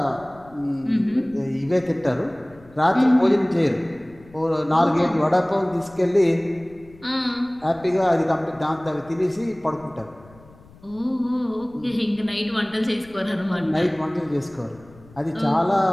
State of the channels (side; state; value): left; noise; rumble, 24 dB below the sound